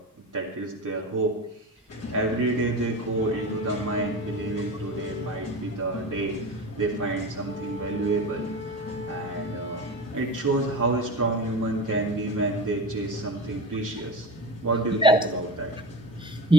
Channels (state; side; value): normal; both; correlation 0.29